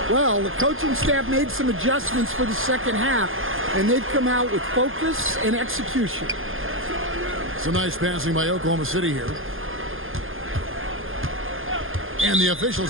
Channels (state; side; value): late; left; 0.59 ms